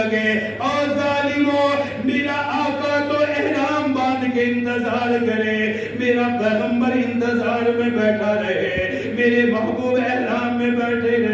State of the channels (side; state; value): both; identical; correlation 1.00